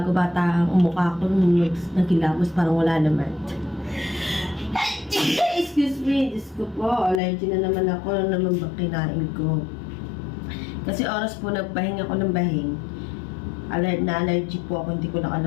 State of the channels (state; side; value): drops out; right; at 7.2 s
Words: bata ang mukha ko nung nagkilamos, parang wala naman. Excuse me, Diyos ko po, allergy na naman ako, ano naman ba kinain ko? Kasi oras po nagbahin ako ng bahing. Allergy po ako, hindi ko na